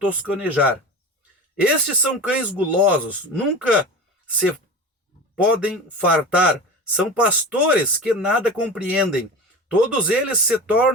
Estes são cães gulosos, nunca se podem fartar. São pastores que nada compreendem. Todos eles se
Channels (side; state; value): both; normal; correlation 0.31